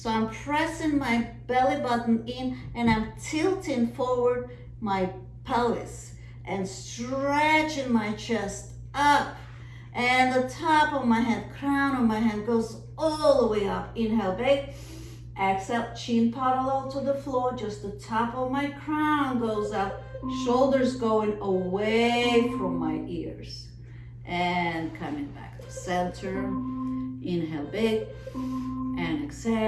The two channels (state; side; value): identical; both; correlation 1.00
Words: I'm pressing my belly button in, and I'm tilting forward my pelvis and stretching my chest up. And the top of my head, crown of my head goes all the way up. Inhale, big. Exhale, chin parallel to the floor. Just the top of my crown goes up. Shoulders going away from my ears. And coming back to center. Inhale, big. And